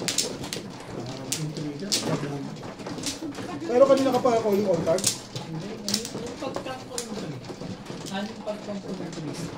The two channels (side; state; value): both; identical; correlation 1.00